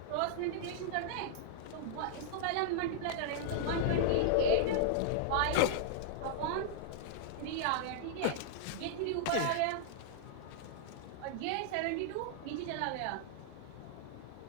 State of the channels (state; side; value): different; both; correlation -0.01